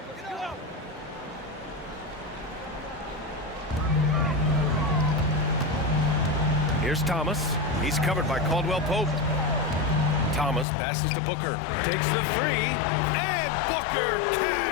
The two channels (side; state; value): right; drops out; at 10.7 s